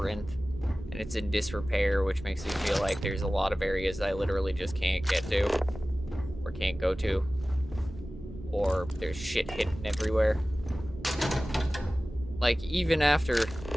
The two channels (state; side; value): normal; both; correlation 0.97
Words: and it's in disrepair, which makes me feel like there's a lot of areas I literally just can't get to, or can't go to, or there's shit hidden everywhere. Like, even after,